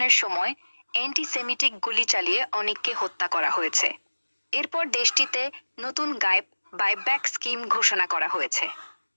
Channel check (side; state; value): both; inverted; correlation -1.00